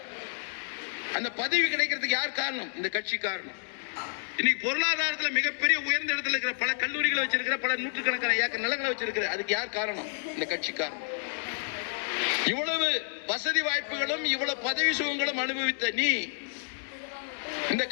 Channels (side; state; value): right; silent; 58 dB below the other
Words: அந்த பதவி கிடைக்கிறதுக்கு யார் காரணம்? இந்த கட்சி காரணம். இன்னைக்கு பொருளாதாரத்தில் மிகப்பெரிய உயர்ந்த இடத்துல இருக்கிற பல கல்லூரிகளை வச்சிருக்கிற, பல நூற்றுக்கணக்கான ஏக்கர் நிலங்களை வச்சிருக்கிற, அதுக்கு யார் காரணம்? இந்த கட்சி காரணம். இவ்வளவு வசதி வாய்ப்புகளும் இவ்வளவு பதவி சுகங்களும் அனுபவித்த நீ இந்த